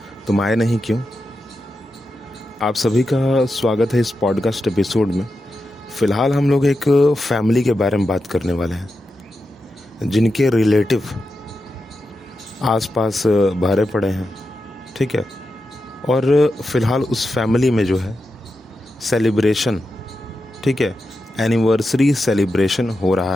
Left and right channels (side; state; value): both; normal; correlation 0.89